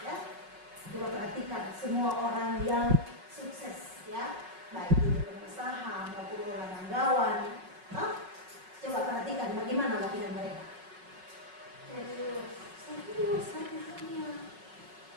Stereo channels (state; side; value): late; left; 5.4 ms